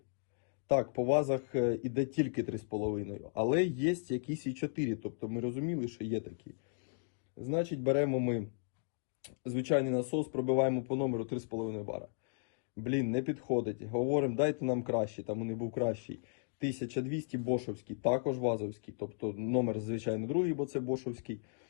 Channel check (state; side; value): silent; right; digital silence